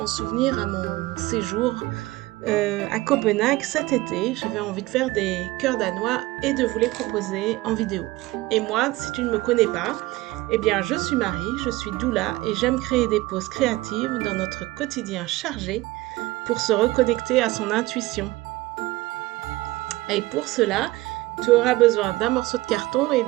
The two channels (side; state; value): left; quieter; 19.3 dB